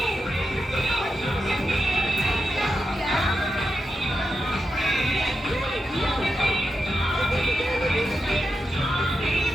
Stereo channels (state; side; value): normal; both; correlation 0.88